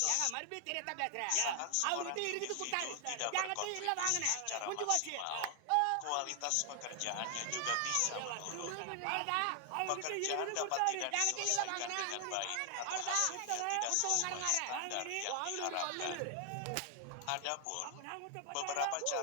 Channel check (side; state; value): both; different; correlation 0.00